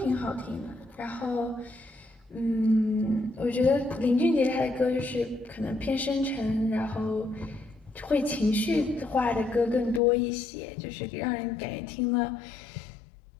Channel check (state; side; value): drops out; right; at 10.0 s